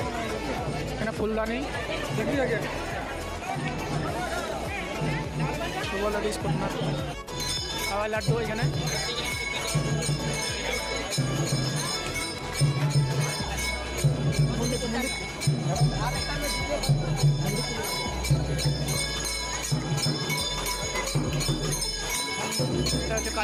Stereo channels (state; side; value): identical; both; correlation 1.00